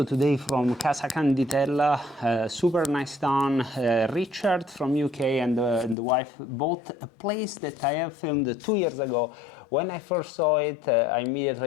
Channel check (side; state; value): right; drops out; at 6.0 s